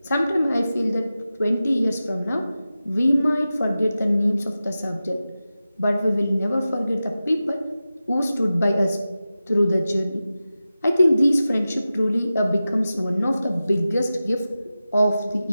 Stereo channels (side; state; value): both; inverted; correlation -0.94